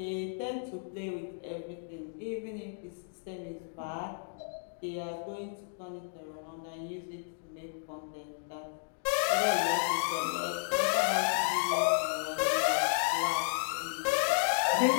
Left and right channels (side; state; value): right; silent; digital silence